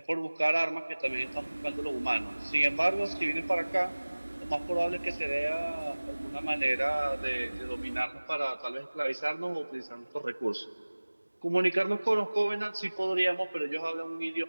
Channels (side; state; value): both; inverted; correlation -1.00